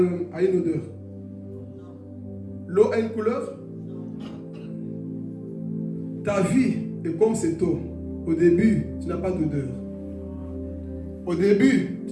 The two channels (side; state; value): both; identical; correlation 1.00